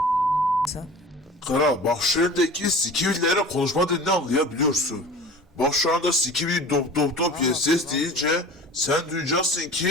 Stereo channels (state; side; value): normal; both; correlation 0.40